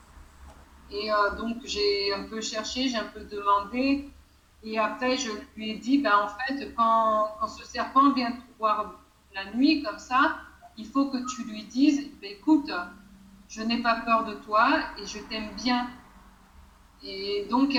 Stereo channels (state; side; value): identical; both; correlation 1.00